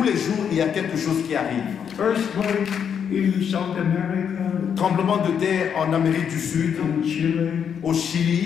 les jours, il y a quelque chose qui arrive. Earthquake in South America, Tremblement de terre en Amérique du Sud, in Chile, au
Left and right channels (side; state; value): right; quieter; 7.8 dB